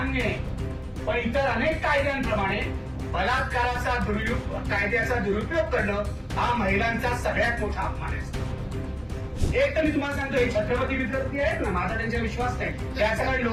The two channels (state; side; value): identical; both; correlation 1.00